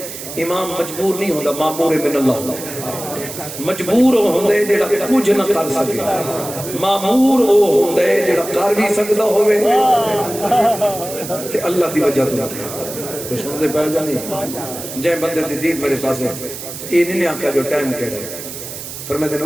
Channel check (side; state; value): right; noise; hiss, 10 dB below the sound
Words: امام مجبور نہیں ہوتا معمور من اللہ مجبور ہوندے جڑا کچھ نہ کر سکے معمور ہوندے جڑا کر بھی سکتا ہوئے کہ اللہ دی وجہ تو کچھ مجھے پہل جانی جائیں بندے دی دید میرے پاس ہے یہ نہیں آکا جو ٹائم کہہ رہے فرمائے دے